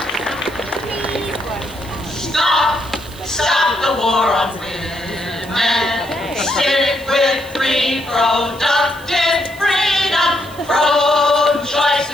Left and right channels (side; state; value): right; noise; hiss, 21 dB below the sound